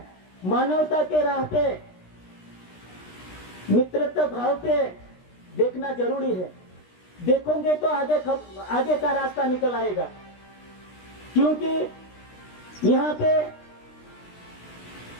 मानवता के राह पे, मित्रता भाव पे देखना जरूरी है। देखोगे तो आगे का रास्ता निकल आएगा। क्योंकि यहाँ पे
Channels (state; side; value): late; right; 16 ms